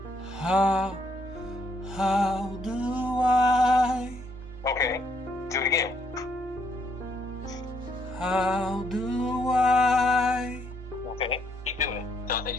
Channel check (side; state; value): both; normal; correlation 0.72